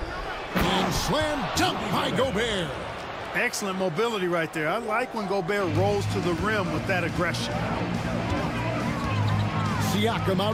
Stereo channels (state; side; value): identical; both; correlation 1.00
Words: And slam dunk by Gobert. Excellent mobility right there. I like when Gobert rolls to the rim with that aggression. Siakam